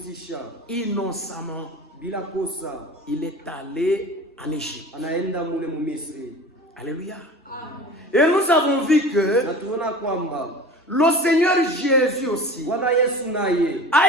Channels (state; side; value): normal; both; correlation 0.38